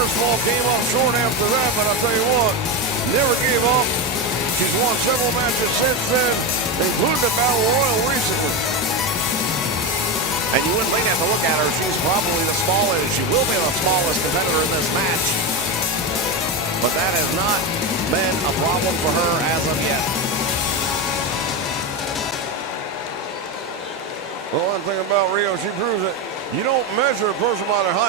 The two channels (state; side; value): normal; both; correlation 0.16